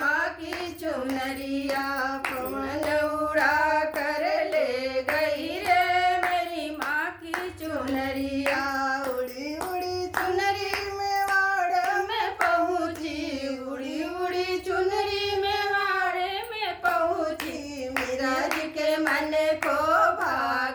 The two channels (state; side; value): identical; both; correlation 1.00